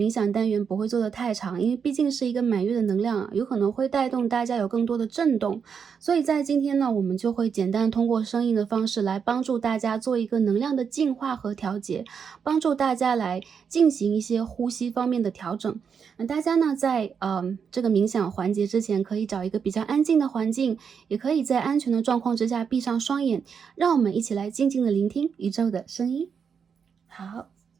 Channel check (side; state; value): left; quieter; 6.6 dB